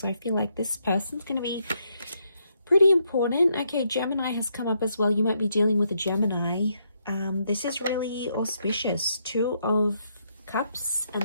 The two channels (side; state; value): both; inverted; correlation -0.77